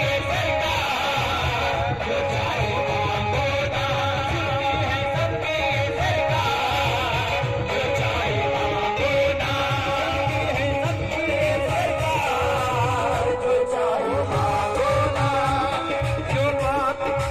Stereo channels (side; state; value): both; identical; correlation 1.00